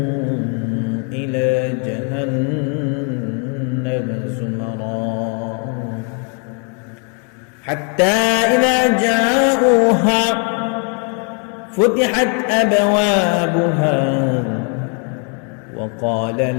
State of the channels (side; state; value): right; quieter; 39.9 dB